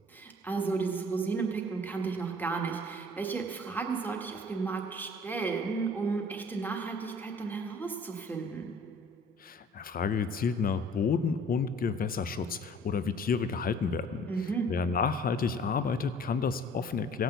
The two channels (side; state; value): both; normal; correlation 0.51